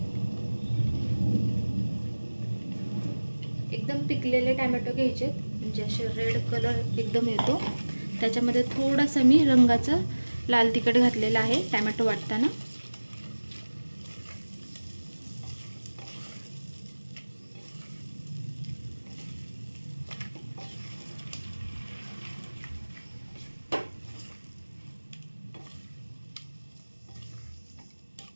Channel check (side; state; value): both; inverted; correlation -1.00